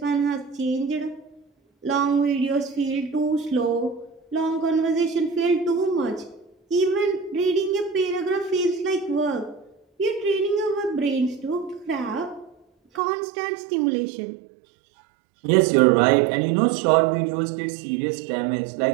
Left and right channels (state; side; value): drops out; left; at 13.0 s